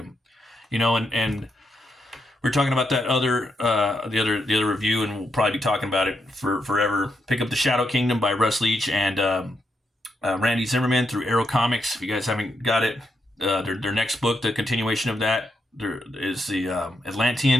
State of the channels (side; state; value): both; normal; correlation 0.81